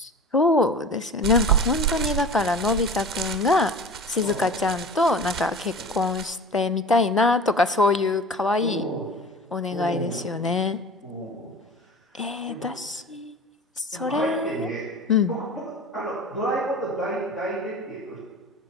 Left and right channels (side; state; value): both; normal; correlation 0.37